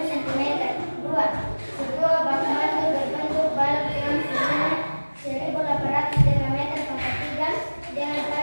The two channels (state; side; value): inverted; both; correlation -1.00